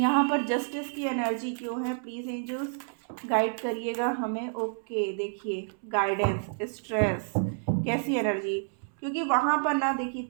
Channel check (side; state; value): left; silent; 58 dB below the other